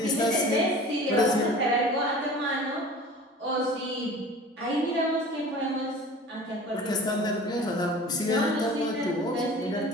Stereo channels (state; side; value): normal; both; correlation 0.41